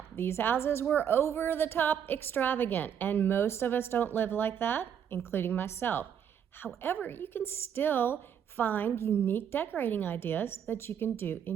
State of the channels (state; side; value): quieter; left; 8.6 dB